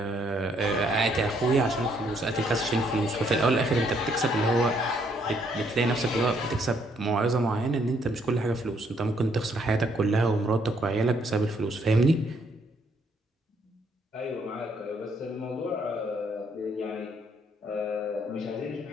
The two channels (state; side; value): normal; both; correlation 0.69